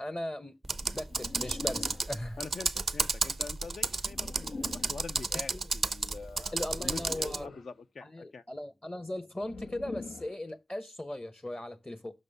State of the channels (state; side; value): normal; both; correlation 0.90